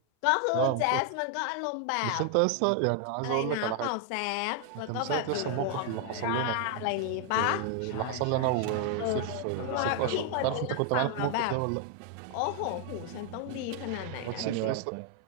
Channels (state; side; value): different; both; correlation 0.00